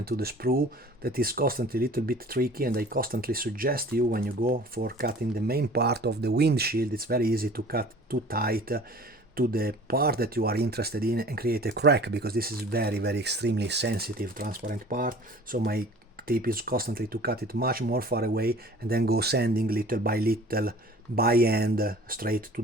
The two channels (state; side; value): normal; both; correlation 0.46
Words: to the sprue that is constantly a little bit tricky, and I constantly suggest you, when you go for cutting the main part of the windshield, it's very easy to cut too tight to the part that you are interested in and create a crack, because this is very extremely sensitive transparent part. So my tip is constantly to cut it much more far away, and then go sanding little by little by hand straight to